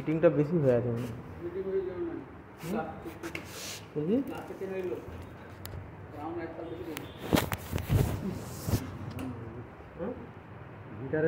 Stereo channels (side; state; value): both; identical; correlation 1.00